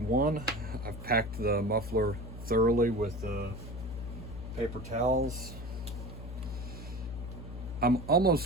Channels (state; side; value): noise; left; hum, 9 dB below the sound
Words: I've packed the muffler thoroughly with paper towels. I'm